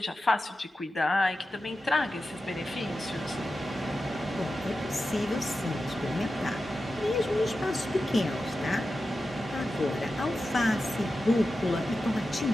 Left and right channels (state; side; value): normal; both; correlation 0.92